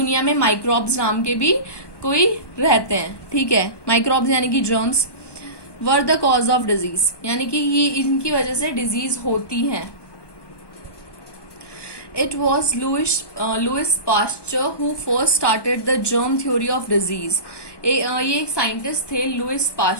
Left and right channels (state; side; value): late; right; 1.2 ms